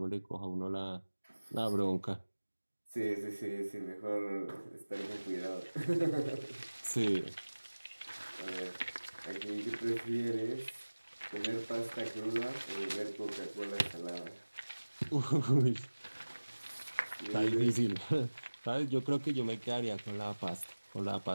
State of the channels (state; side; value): inverted; both; correlation -1.00